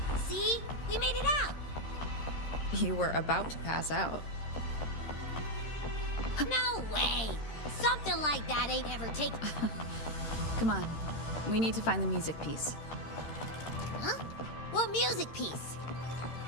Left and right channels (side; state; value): right; late; 13 ms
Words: See? We made it out. You were about to pass out. No way. Something like that ain't ever taken. Come on. We need to find the music piece. Huh? What music piece?